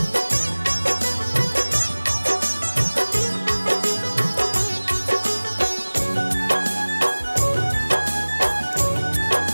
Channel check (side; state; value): both; inverted; correlation -1.00